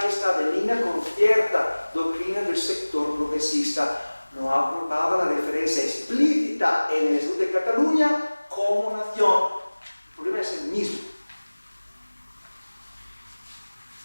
y estaba en línea con cierta doctrina del sector progresista. No aprobaba la referencia explícita en el Estatuto de Cataluña como nación. El problema es el mismo.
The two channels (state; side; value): inverted; both; correlation -1.00